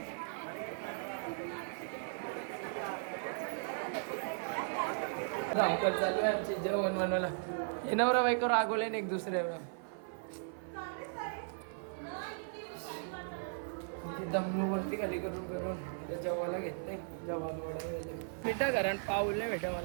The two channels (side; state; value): left; silent; 53 dB below the other